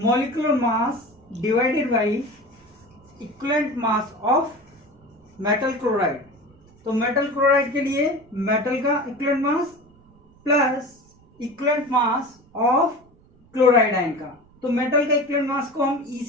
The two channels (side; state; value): right; noise; rumble, 29 dB below the sound